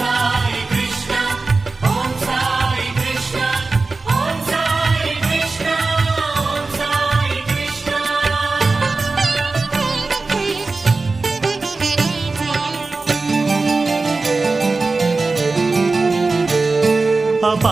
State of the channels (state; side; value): quieter; left; 3.7 dB